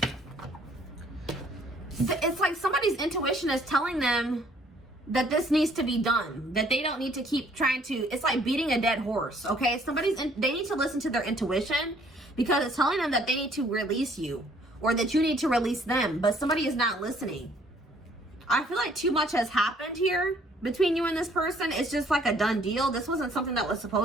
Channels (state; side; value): normal; both; correlation 0.62